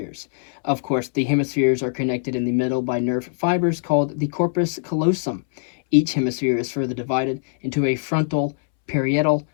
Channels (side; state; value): right; silent; 64 dB below the other